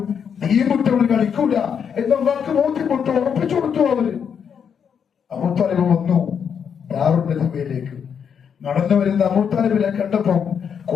തീമുട്ടവർ കളിക്കൂല എന്നവർക്ക് ബോധ്യപ്പെട്ടു, ഉറപ്പിച്ചു കൊടുത്തു. അവര് അബൂ താലിബ് വന്നു ദാറുൽ നദീമയിലേക്ക്. നടന്നു വരുന്ന അബൂ താലിബിനെ കണ്ടപ്പോ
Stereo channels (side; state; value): right; quieter; 7.3 dB